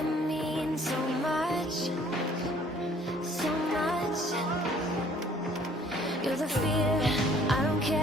mean so much, so much. You're the fear, I don't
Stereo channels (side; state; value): both; normal; correlation 0.58